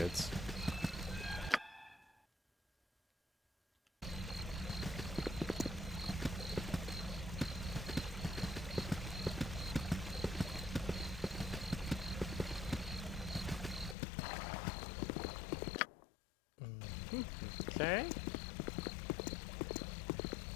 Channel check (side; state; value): right; drops out; at 14.0 s